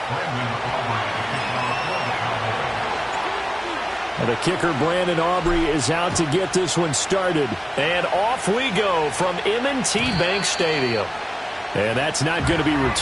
The kicker, Brandon Aubrey, is out to get this one started. And off we go from M&T Bank Stadium. And that's not going to be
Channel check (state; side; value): identical; both; correlation 1.00